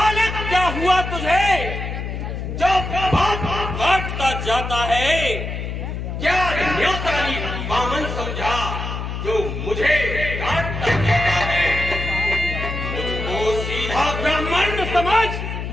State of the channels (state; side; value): noise; left; hum, 5 dB below the sound